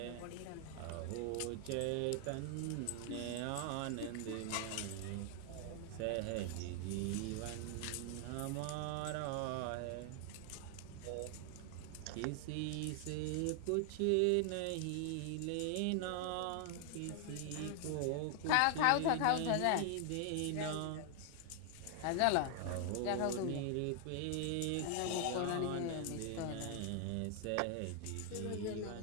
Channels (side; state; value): both; different; correlation 0.00